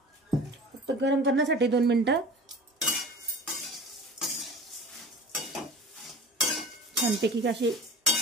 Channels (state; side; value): normal; both; correlation 0.39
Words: फक्त गरम करण्यासाठी 2 मिनिटं। छानपैकी असे